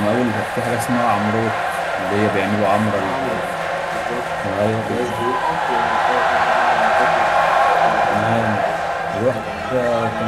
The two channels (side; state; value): both; identical; correlation 1.00